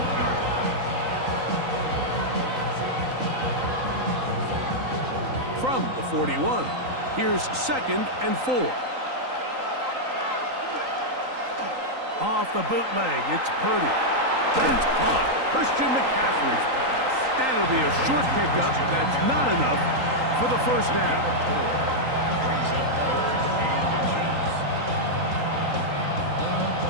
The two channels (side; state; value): left; late; 3.9 ms